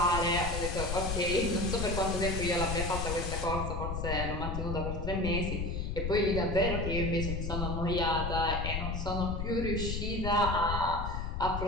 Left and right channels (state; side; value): noise; left; rumble, 2 dB below the sound